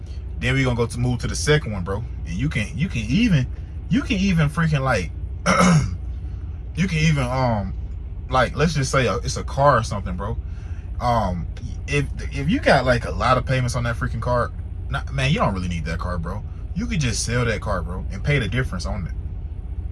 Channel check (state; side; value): identical; both; correlation 1.00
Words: Then we're gonna move to the second one, bro. And you can even freaking like you can even like, let's just say it's a car or something, bro. If you got like a lot of payments on that freaking car, man, you don't really need that car, bro. You could just sell that car, bro, and pay the difference on it.